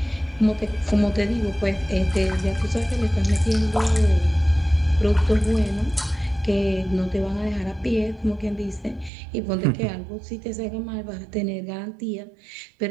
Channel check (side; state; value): left; drops out; at 9.1 s